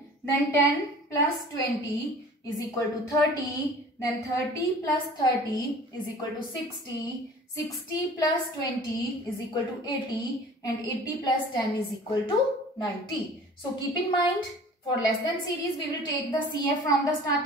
Then 10 plus 20 is equal to 30. Then 30 plus 30 is equal to 60. 60 plus 20 is equal to 80. And 80 plus 10 is equal to 90. So keep in mind, for less than series, we will take the CF from the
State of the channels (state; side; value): normal; both; correlation 0.45